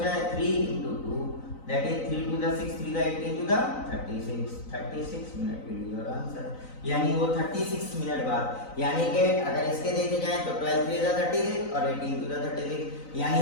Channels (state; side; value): late; right; 3.9 ms